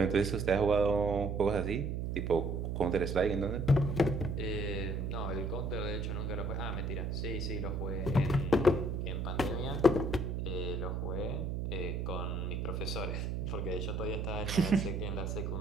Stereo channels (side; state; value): right; noise; hum, 2 dB below the sound